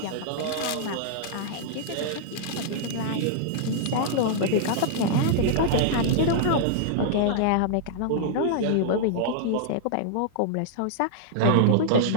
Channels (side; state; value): both; different; correlation -0.01